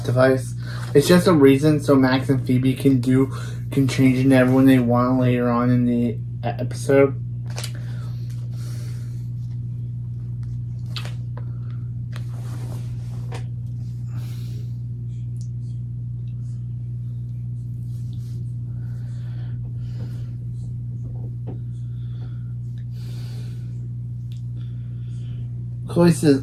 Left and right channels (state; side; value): identical; both; correlation 1.00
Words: device. It's just a reason so Max and Phoebe can change into everyone they want later on in the episode. Chloe says,